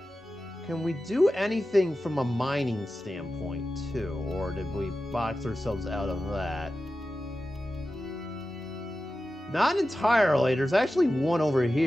Can we do anything from a mining standpoint, too? Or did we box ourselves out of that? Not entirely. There's actually one over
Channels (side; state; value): both; normal; correlation 0.93